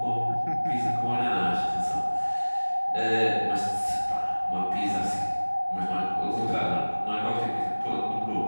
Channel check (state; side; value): inverted; both; correlation -1.00